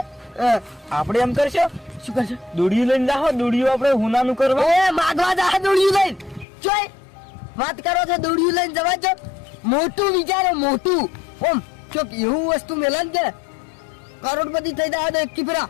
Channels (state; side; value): drops out; right; at 6.5 s